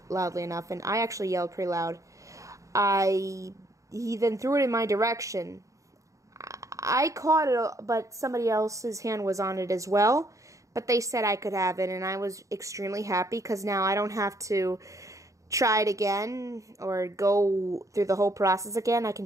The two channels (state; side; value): late; left; 0.16 ms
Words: enough, and I actually yelled pretty loud. He then threw it in my direction. I caught it, but somebody else's hand was on it as well, but they said I could have it, and I was extremely happy, because now I don't have to try it again or go through the whole process again. I can